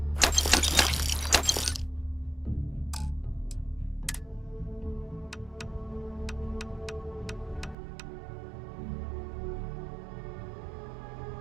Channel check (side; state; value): left; drops out; at 7.8 s